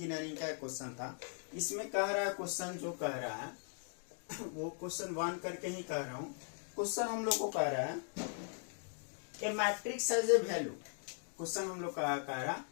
का क्वेश्चन था। इसमें कह रहा है क्वेश्चन जो कह रहा है वो क्वेश्चन 1 करके ही कह रहा हूँ। क्वेश्चन हम लोग को कह रहा है a matrix as a value. Question हम लोग कह रहा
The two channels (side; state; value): right; silent; 52 dB below the other